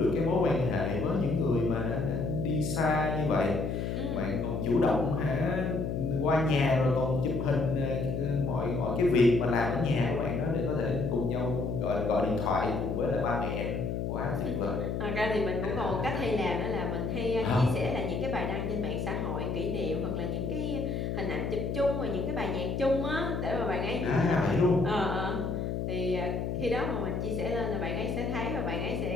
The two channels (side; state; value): left; noise; hum, 2 dB below the sound